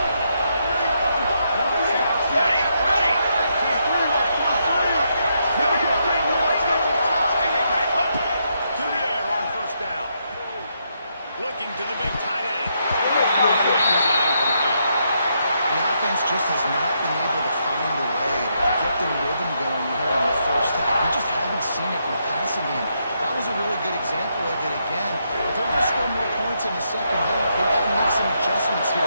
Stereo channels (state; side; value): inverted; both; correlation -0.78